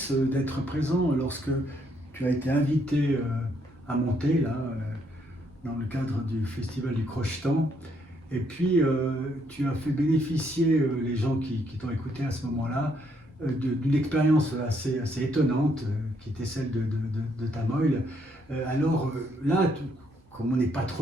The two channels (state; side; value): normal; both; correlation 0.72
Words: d'être présent lorsque tu as été invité à monter là, dans le cadre du festival du Crochetan, et puis tu as fait bénéficier les gens qui t'ont écouté à ce moment-là d'une expérience assez étonnante qui était celle de Tamoil. Alors là, comme on n'est pas trop